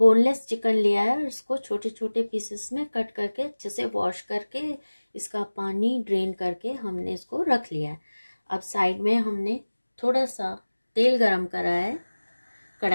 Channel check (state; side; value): inverted; both; correlation -1.00